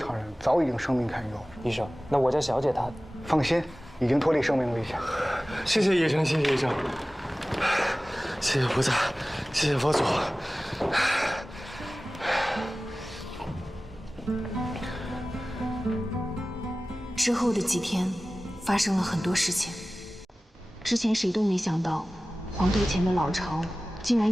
人，早已经生命堪忧。医生，那我家小姐她……放心，已经脱离生命危险。谢谢医生，谢谢医生，谢谢菩萨，谢谢佛祖。之后的几天，发生了很多事情。之前谁都没想到，黄头前的老巢竟然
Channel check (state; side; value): normal; both; correlation 0.97